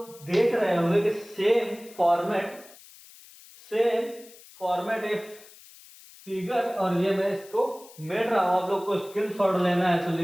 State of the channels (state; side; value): noise; left; hiss, 21 dB below the sound